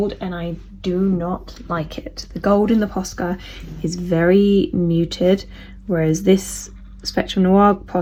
and I do not like it. The gold in the Posca is very muted, whereas this Spectrum Noir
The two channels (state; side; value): identical; both; correlation 1.00